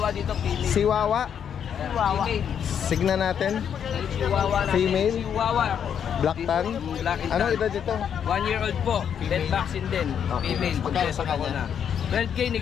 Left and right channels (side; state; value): right; quieter; 8.3 dB